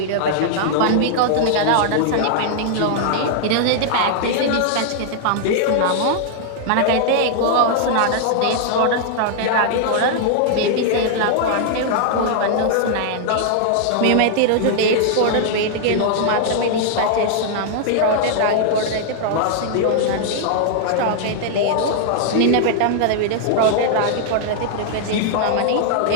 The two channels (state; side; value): different; both; correlation -0.01